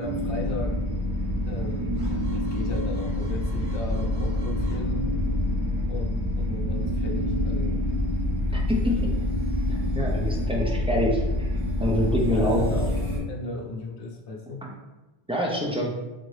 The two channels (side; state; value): both; normal; correlation 0.51